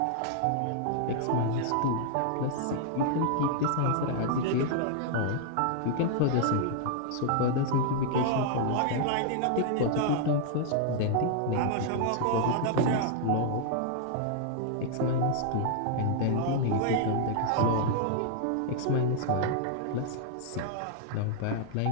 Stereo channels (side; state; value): both; different; correlation -0.01